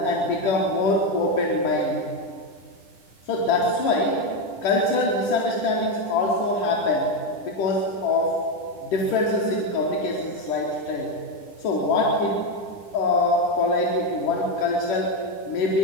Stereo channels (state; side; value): late; right; 10 ms